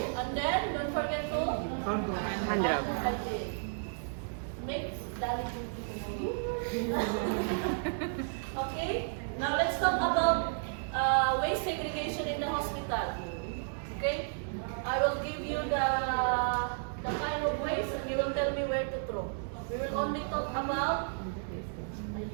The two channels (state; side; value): silent; left; digital silence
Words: And then, don't forget to Hand rub. Hand rub. Okay. Make Dali. Okay. Now let's talk about waste segregation in the hospital. Okay. I will give you the kind of waste, and you will tell me where to throw. We will only talk about